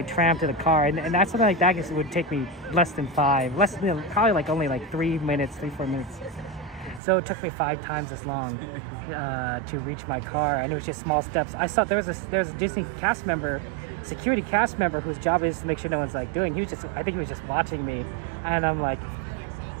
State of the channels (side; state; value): left; drops out; at 7.0 s